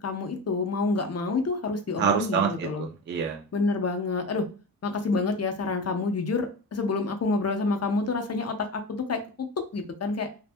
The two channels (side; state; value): both; normal; correlation 0.26